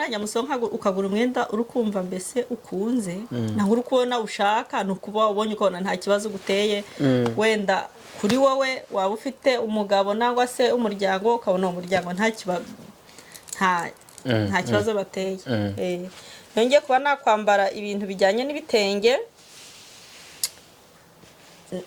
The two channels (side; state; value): both; identical; correlation 1.00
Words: musohoka ukagura umwenda urukumva mbese ukunze naho uri kubona ushaka no kuba ubonye ukabona nta kibazo guteye wenda kuri wowe waba ufite umugabo nangwa se umuryango ukabona umuryango nta kibazo bateye yongeye kuba nakwambara ibintu bijyanye n'ibitenge